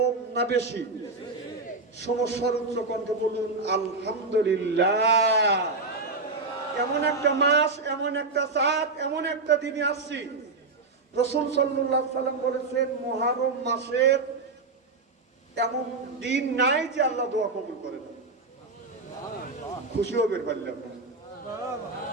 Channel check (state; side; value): quieter; left; 3.7 dB